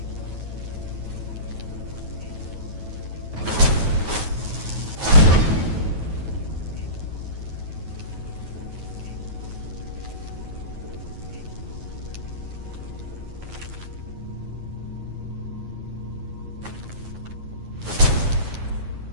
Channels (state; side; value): late; left; 9.4 ms